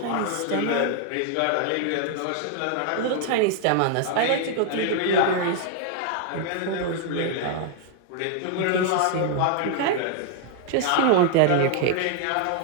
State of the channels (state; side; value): different; both; correlation 0.00